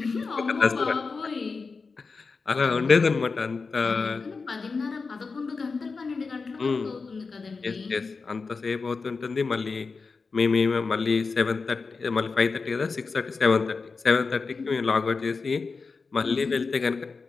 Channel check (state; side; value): quieter; right; 4.5 dB